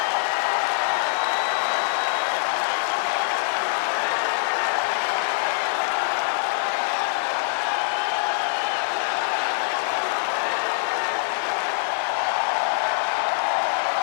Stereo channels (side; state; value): right; silent; digital silence